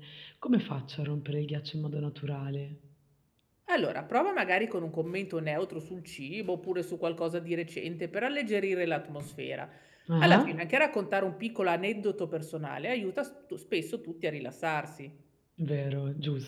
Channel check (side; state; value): both; identical; correlation 1.00